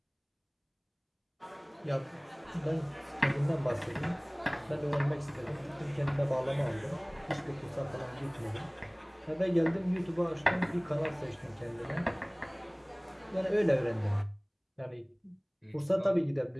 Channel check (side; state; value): both; identical; correlation 1.00